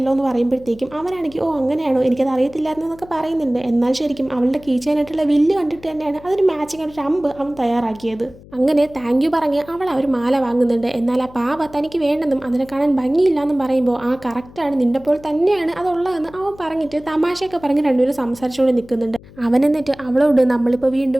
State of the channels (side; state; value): left; noise; hum, 21 dB below the sound